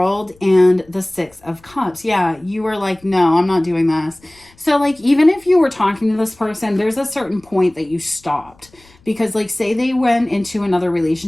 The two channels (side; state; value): left; noise; rumble, 29 dB below the sound